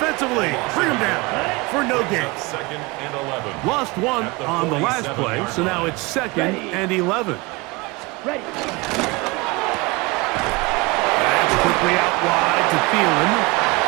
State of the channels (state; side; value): quieter; left; 24.8 dB